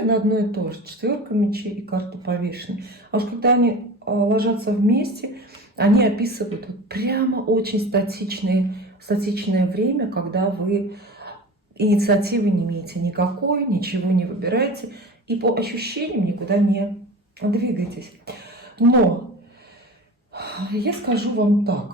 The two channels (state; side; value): normal; both; correlation 0.34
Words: одно и то же. Четверка мечей и карта повешенной. А уж когда они ложатся вместе, они описывают вот прямо очень статичное время, когда вы инициативы не имеете никакой, ничего не выбираете и по ощущениям никуда не двигаетесь. Но я скажу вам